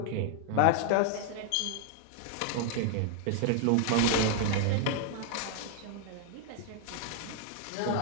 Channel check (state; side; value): different; both; correlation 0.00